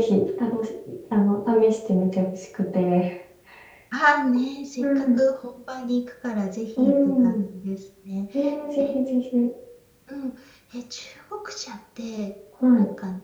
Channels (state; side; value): identical; both; correlation 1.00